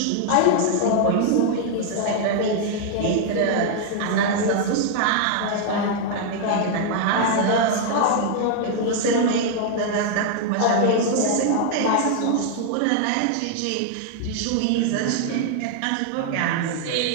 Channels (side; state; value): both; different; correlation 0.00